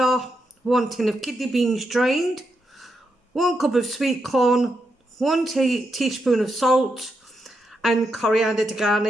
1 tin of kidney beans drained, 1 cup of sweet corn, 1 teaspoon of salt and coriander to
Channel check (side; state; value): both; normal; correlation 0.84